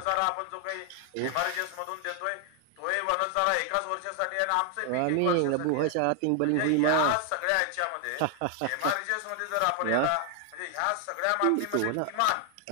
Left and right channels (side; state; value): both; different; correlation 0.00